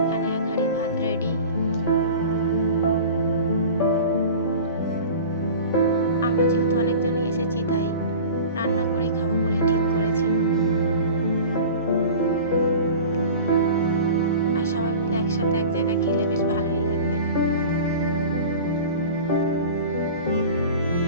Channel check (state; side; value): inverted; both; correlation -0.37